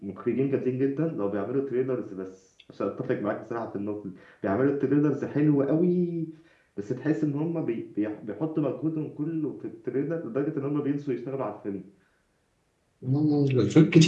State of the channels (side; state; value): both; identical; correlation 1.00